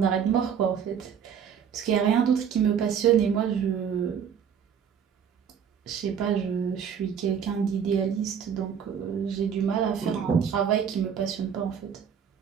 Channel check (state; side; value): quieter; left; 7.7 dB